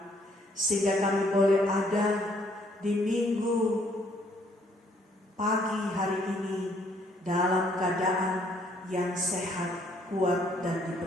sehingga kami boleh ada di minggu pagi hari ini dalam keadaan yang sehat, kuat, dan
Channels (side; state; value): both; normal; correlation 0.66